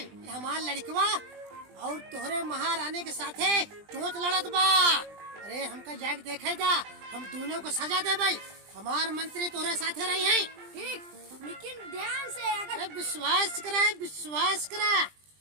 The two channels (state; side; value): late; left; 20 ms